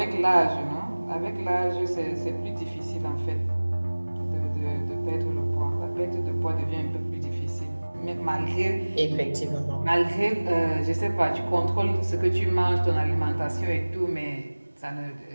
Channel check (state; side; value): inverted; both; correlation -1.00